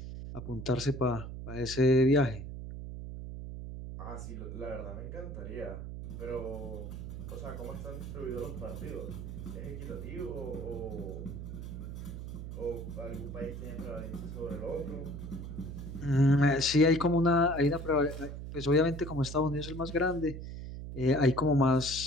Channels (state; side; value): noise; right; hum, 8 dB below the sound